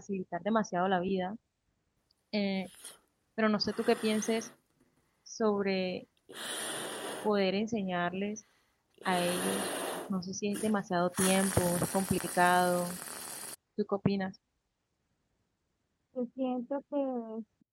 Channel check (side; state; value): both; identical; correlation 1.00